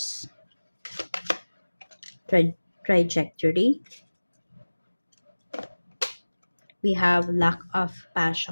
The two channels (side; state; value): both; inverted; correlation -1.00